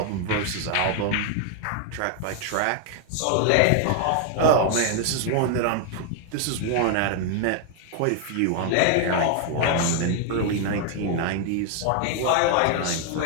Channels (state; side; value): different; both; correlation 0.00